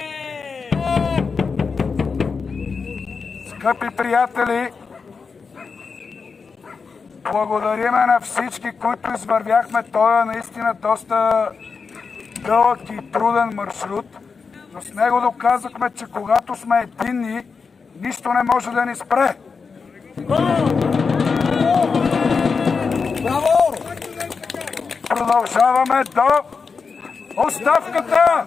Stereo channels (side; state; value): right; quieter; 5.1 dB